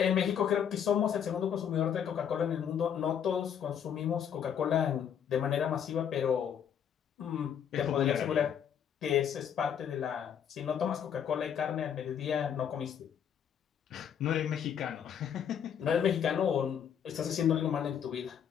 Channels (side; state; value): right; quieter; 8.5 dB